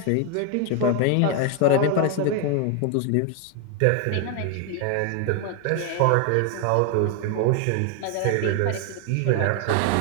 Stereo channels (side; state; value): both; different; correlation 0.01